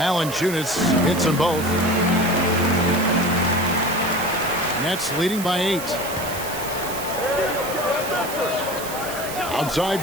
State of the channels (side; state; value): right; noise; hiss, 10 dB below the sound